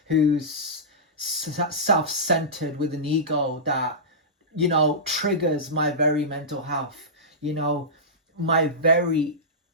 who's self-centered with an ego that triggers my very mental health, my very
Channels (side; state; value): both; normal; correlation -0.16